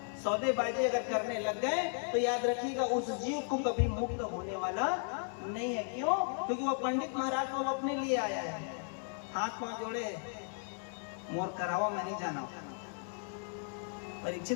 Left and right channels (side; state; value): right; silent; 54 dB below the other